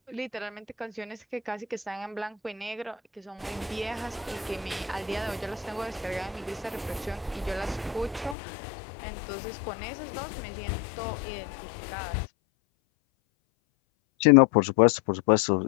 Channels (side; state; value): right; drops out; at 8.3 s